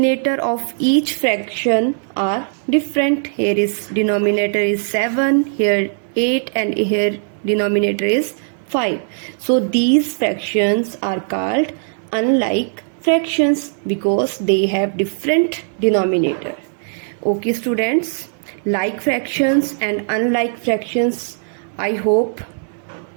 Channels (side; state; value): left; silent; digital silence